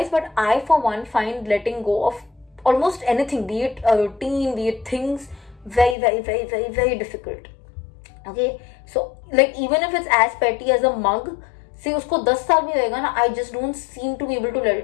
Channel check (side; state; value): right; drops out; at 6.0 s